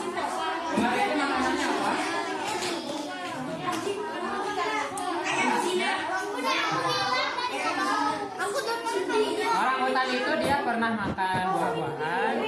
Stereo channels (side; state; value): both; identical; correlation 1.00